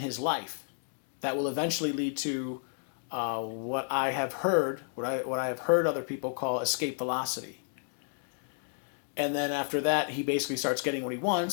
life that will eventually lead to what I have heard other people call escape velocity. And then after that, he basically starts getting what he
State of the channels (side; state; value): right; silent; digital silence